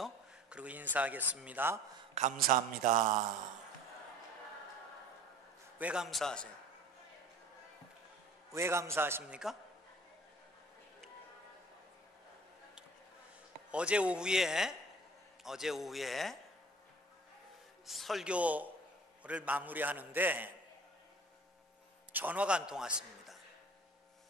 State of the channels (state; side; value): normal; both; correlation 0.46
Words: 그리고 인사하겠습니다. 감사합니다. 왜 감사하세요? 왜 감사하십니까? 어제 오후에 설교를 마무리하는데 전화가 한 통 왔습니다.